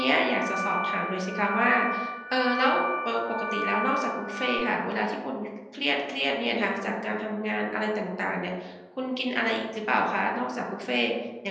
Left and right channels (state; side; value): identical; both; correlation 1.00